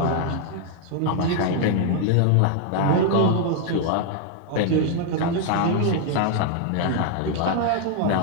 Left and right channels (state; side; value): different; both; correlation 0.00